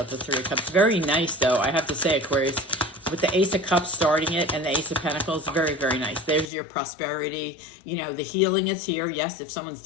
the Three of Cups. Very nice, though. I have to say, Aquarius, with the Ace of Cups starting it and the Ace of Pentacles, very, very nice. There's your prosperity. The healing is here. Yes, if someone's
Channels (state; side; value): drops out; right; at 6.5 s